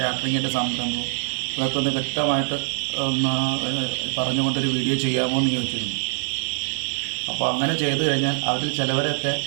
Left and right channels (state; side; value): silent; left; 63 dB below the other